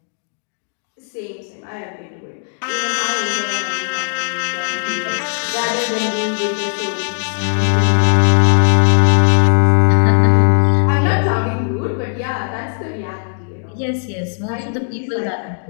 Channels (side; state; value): right; silent; digital silence